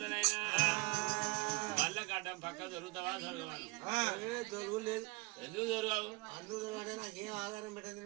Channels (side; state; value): left; quieter; 25.6 dB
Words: మళ్ళీ గడ్డం పక్క దొరుకుతావా దొరకవాను? ఎందుకు దొరకవు? అరే మనకి